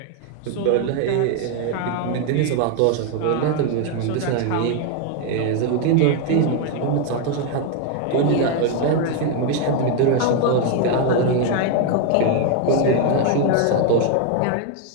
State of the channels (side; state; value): both; different; correlation 0.01